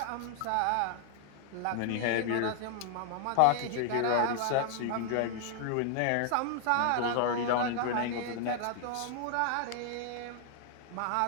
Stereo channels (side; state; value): both; different; correlation 0.00